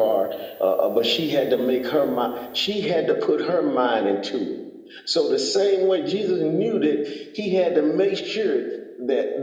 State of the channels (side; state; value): both; identical; correlation 1.00